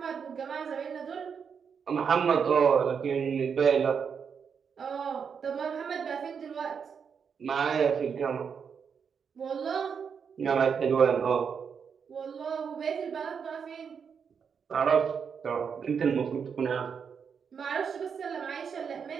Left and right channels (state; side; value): quieter; left; 6.6 dB